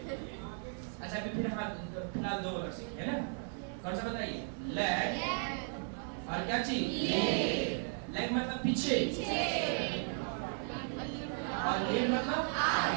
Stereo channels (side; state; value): left; silent; 54 dB below the other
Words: अच्छा अभी फिर फिलहाल 2 वर्ड सीखे है ना? कौन सा बताइए? लेग और क्या चीज? लेग मतलब पीछे और लीड मतलब